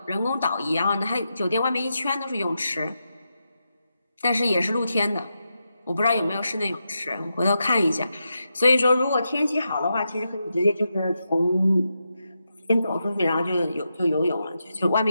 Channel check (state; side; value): inverted; both; correlation -0.87